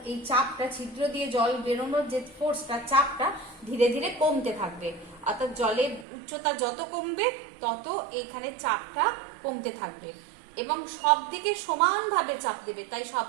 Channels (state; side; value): drops out; left; at 6.1 s